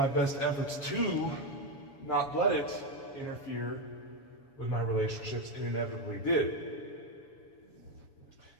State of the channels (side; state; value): right; late; 7.1 ms